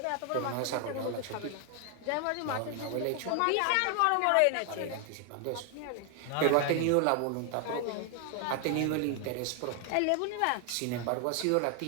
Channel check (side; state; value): both; different; correlation 0.00